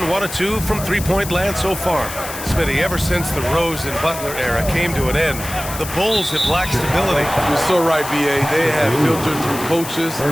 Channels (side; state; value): left; noise; hiss, 10 dB below the sound